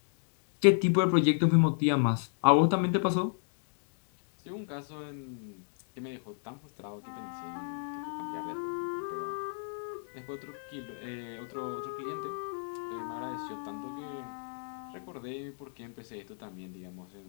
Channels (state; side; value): silent; right; digital silence